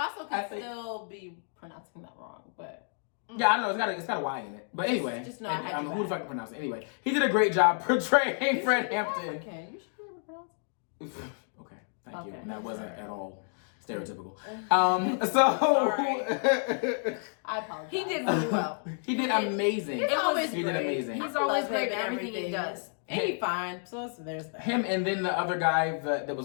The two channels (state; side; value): silent; right; 58 dB below the other